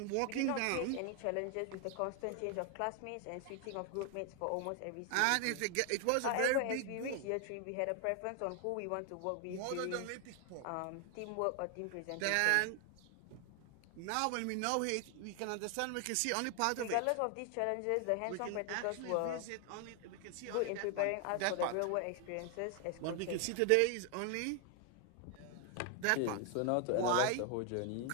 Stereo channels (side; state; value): both; different; correlation 0.00